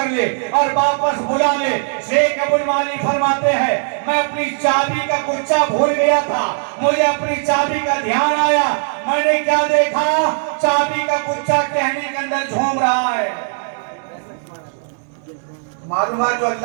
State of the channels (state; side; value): silent; left; 67 dB below the other